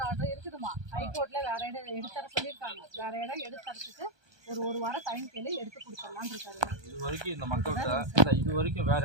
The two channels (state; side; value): late; left; 1.2 ms